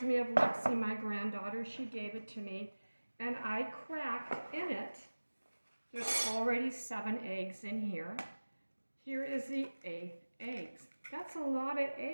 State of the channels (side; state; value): both; inverted; correlation -1.00